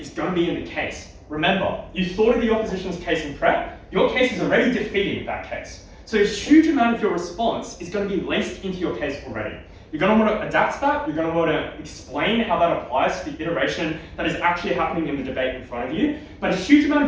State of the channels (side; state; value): both; identical; correlation 1.00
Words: going to be in the case. Remember, you thought of the opposition's case in prep, your case is already defeating that case. So a huge amount of your response is going to be laced into your case already. You're going to want to adapt that, you're going to want to explain how that applies to the iteration that is actually happening in the debate in front of you, but a huge amount